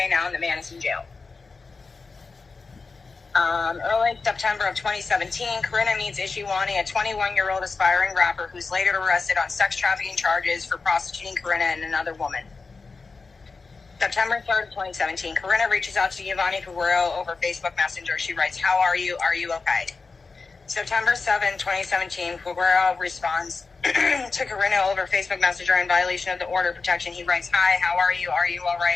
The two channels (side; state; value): right; quieter; 4.3 dB